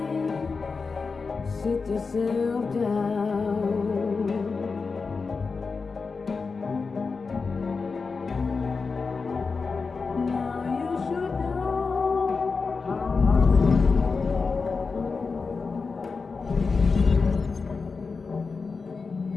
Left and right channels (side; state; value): right; quieter; 4.6 dB